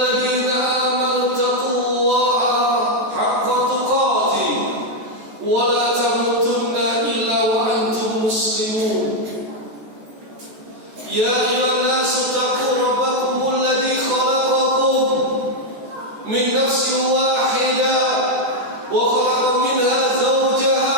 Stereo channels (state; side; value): late; left; 14 ms